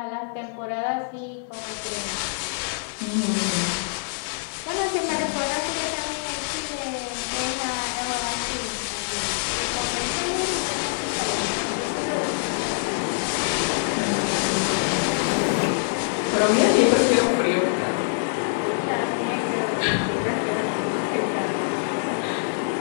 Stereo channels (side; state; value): right; silent; digital silence